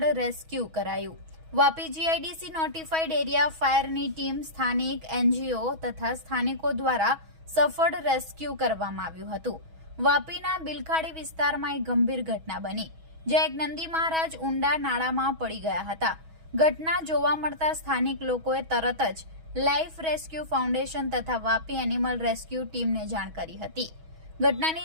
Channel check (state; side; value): late; left; 6.2 ms